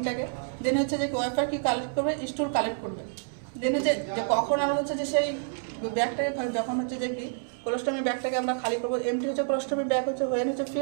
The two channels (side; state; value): left; silent; 59 dB below the other